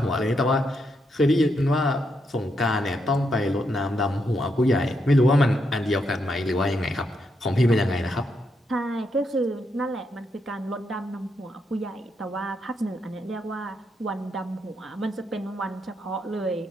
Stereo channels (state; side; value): normal; both; correlation 0.80